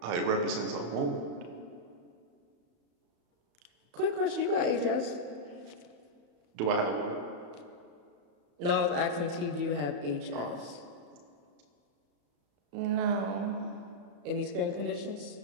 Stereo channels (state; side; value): late; left; 34 ms